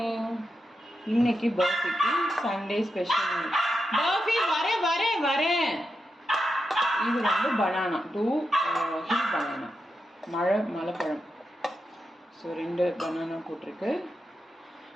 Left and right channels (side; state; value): both; normal; correlation 0.87